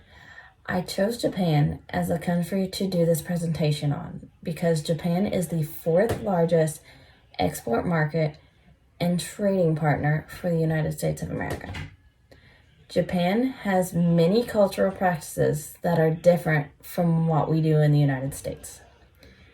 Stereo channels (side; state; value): both; identical; correlation 1.00